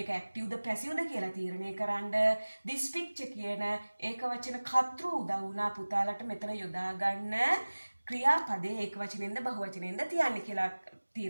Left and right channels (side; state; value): both; inverted; correlation -1.00